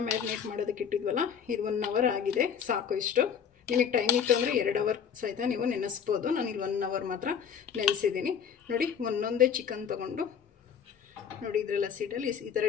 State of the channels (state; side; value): quieter; right; 7.6 dB